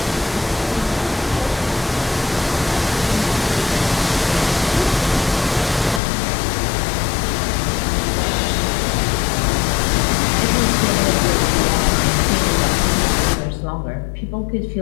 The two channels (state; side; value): drops out; right; at 6.0 s